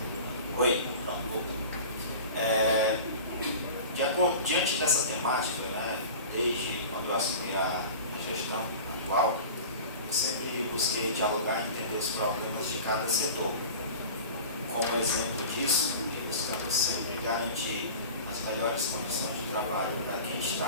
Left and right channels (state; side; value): inverted; both; correlation -0.37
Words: Oi, diante dessa temática, né, desde quando eu assumi a gestão atual, eu sempre busquei dialogar e entender os problemas de cada setor. Como exemplo disso, buscamos sempre garantir as melhores condições de trabalho para quem